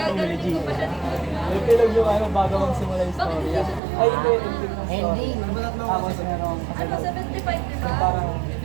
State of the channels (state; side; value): drops out; left; at 3.8 s